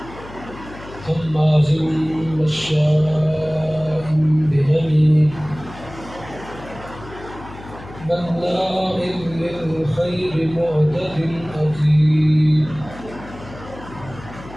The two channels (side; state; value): left; noise; hum, 16 dB below the sound